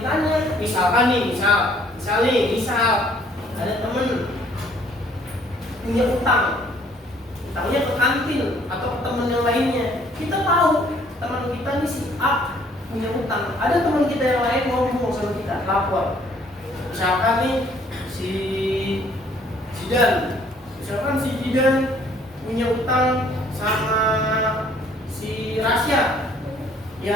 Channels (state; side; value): normal; both; correlation 0.61